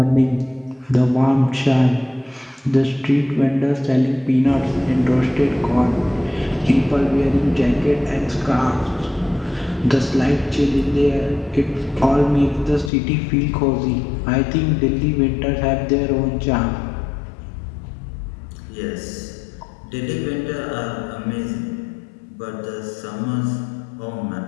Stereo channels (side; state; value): right; drops out; at 12.9 s